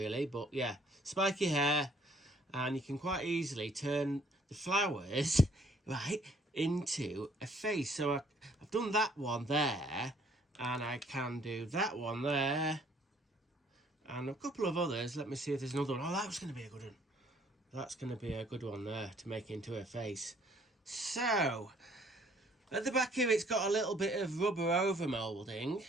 but yeah, spiky hair, and you can quite easily turn the flowers right into a face. So I've done that one there, and I can do that one there, and a couple of others. Let me see if there's another one. Oh, that was going to be a good one. That's going to be a good one there to make into a face. So at the back here, it's got a little bit of rubber over moulding.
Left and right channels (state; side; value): normal; both; correlation 0.62